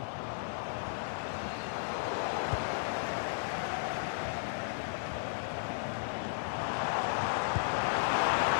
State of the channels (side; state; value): right; silent; digital silence